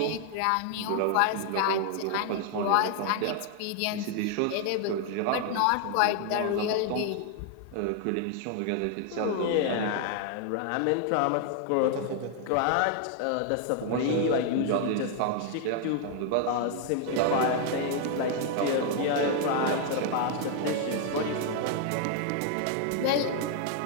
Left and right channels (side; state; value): both; different; correlation 0.00